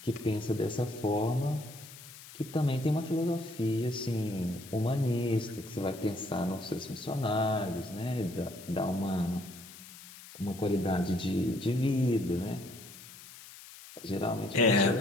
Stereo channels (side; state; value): left; noise; hiss, 17 dB below the sound